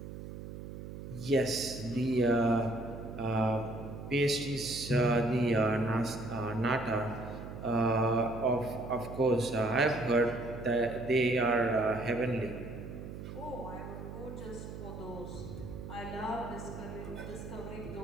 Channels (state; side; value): noise; right; hum, 10 dB below the sound